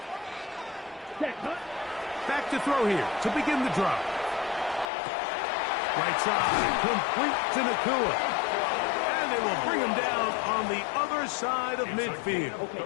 huh? Back to throw here to begin the drop. Right side, complete to Nakua. And they will bring him down on the other side of midfield. Okay,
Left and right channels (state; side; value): drops out; right; at 4.9 s